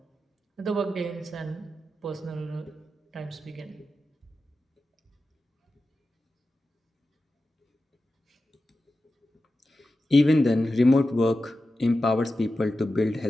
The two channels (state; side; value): normal; both; correlation 0.92